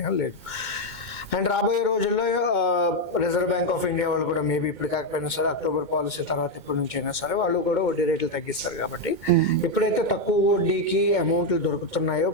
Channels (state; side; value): late; right; 2.2 ms